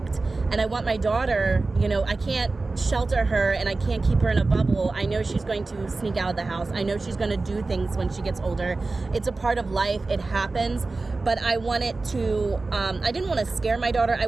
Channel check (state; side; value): quieter; left; 3.5 dB